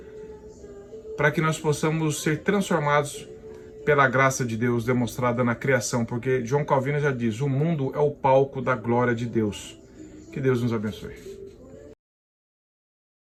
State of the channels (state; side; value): identical; both; correlation 1.00